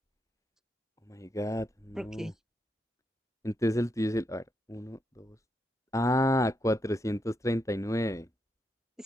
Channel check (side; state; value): both; normal; correlation 0.82